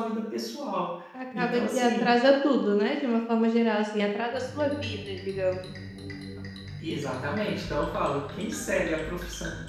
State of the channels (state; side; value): identical; both; correlation 1.00